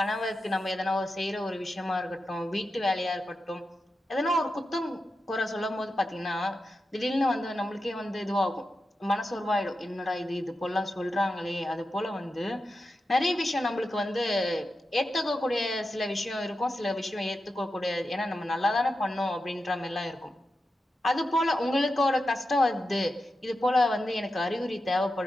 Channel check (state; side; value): normal; both; correlation 0.90